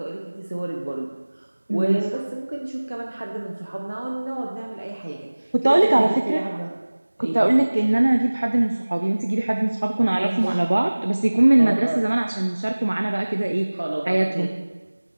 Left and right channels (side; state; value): both; inverted; correlation -1.00